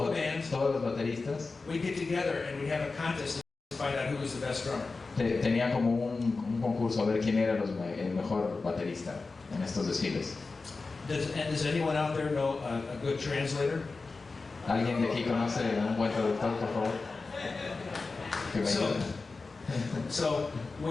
the bands, todos los bateristas we'd get together and we'd have a contest to find out who was the best drummer. tenían como un concurso a ver quién era el mejor baterista en estos desfiles. Does anyone out there know a good translator? ¿Alguien de aquí conoce un buen traductor, por favor? Que me ayude. So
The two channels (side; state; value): right; quieter; 3.9 dB